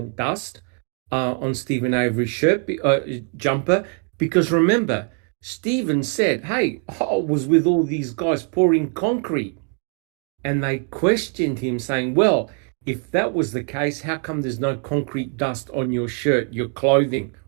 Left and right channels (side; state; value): left; quieter; 38.4 dB